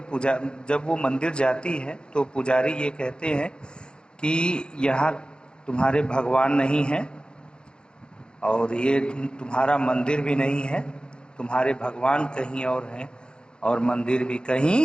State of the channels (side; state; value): right; late; 0.050 ms